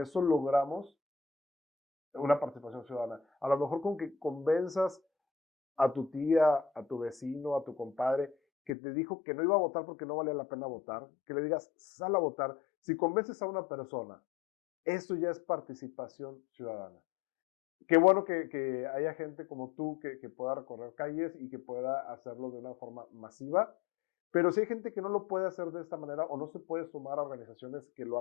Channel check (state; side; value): drops out; right; at 8.7 s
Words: logramos una participación ciudadana. A lo mejor con que convenzas a tu tía, a tu vecino, a tu compadre, que te dijo que no iba a votar porque no valía la pena votar, que le digas, sal a votar. Si convences a una persona, eso ya es participación ciudadana. Qué bueno que haya gente como tú que pueda recorrer calles y que pueda hacerlo de una forma masiva, pero si hay gente que no lo puede hacer de esta manera o no se puede sumar a organizaciones que lo